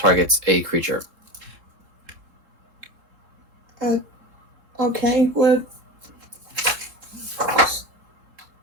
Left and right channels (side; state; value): left; late; 3.6 ms